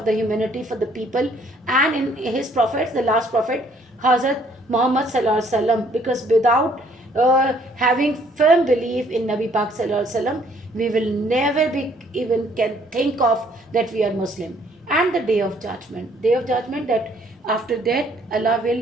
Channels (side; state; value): both; normal; correlation 0.63